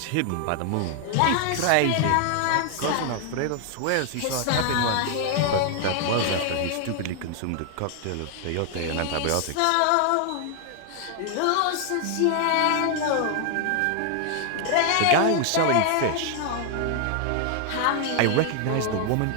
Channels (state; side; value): different; both; correlation 0.00